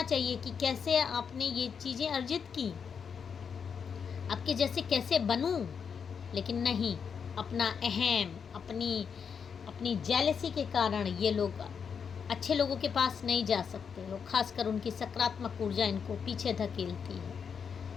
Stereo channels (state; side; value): quieter; right; 6.6 dB